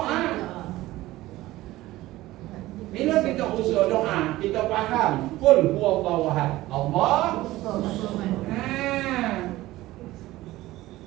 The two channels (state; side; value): quieter; left; 17.1 dB